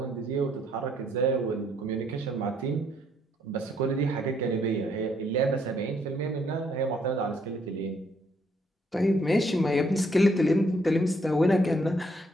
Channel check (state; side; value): normal; both; correlation 0.70